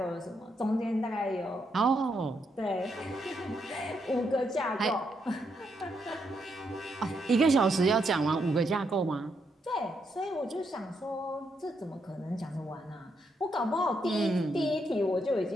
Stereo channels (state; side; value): normal; both; correlation 0.78